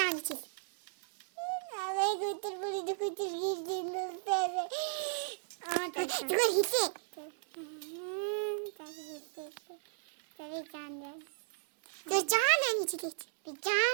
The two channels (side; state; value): left; silent; digital silence